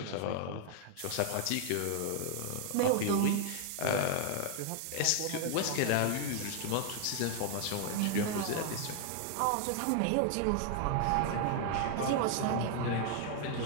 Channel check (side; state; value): both; different; correlation 0.00